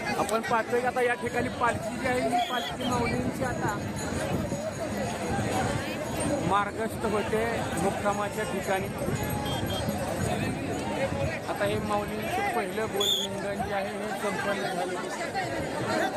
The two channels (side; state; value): both; identical; correlation 1.00